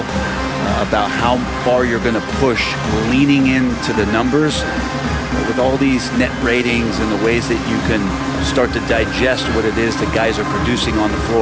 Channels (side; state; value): both; identical; correlation 1.00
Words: about how far you're going to push, leaning into the numbers with all these net ratings and the ways that you can start to digest what it is that guys are producing on the